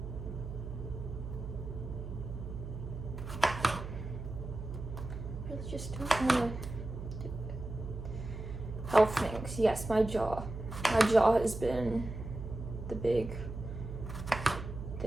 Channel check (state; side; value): noise; right; hum, 8 dB below the sound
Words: I just don't want to do it. Health things. Yes, my jaw. My jaw has been the big